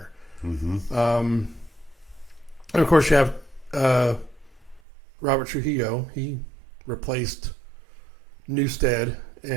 And of course you have Robert Trujillo. He replaced Newsted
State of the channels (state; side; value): drops out; left; at 4.8 s